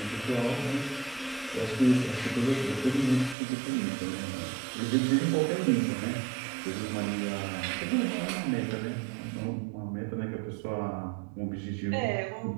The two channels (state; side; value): drops out; left; at 3.4 s